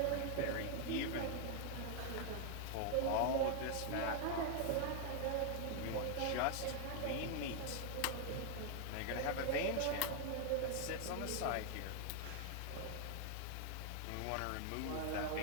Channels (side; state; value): both; different; correlation 0.00